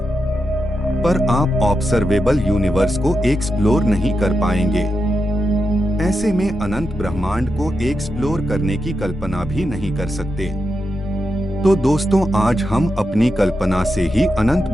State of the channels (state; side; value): normal; both; correlation 0.87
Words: पर आप ऑब्जर्वेबल यूनिवर्स को एक्सप्लोर नहीं कर पाएंगे। ऐसे में अनंत ब्रह्मांड को एक्सप्लोर करने की कल्पना भी नहीं कर सकते। तो दोस्तों, आज हम अपनी कल्पना से ही अनंत